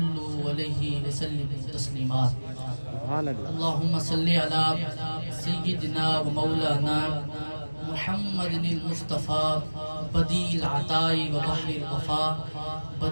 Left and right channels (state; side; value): inverted; both; correlation -1.00